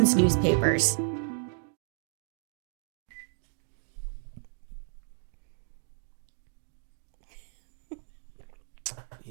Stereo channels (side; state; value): left; silent; 56 dB below the other